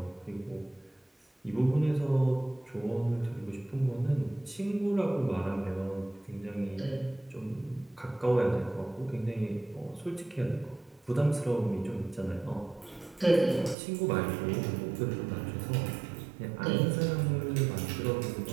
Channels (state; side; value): drops out; left; at 13.8 s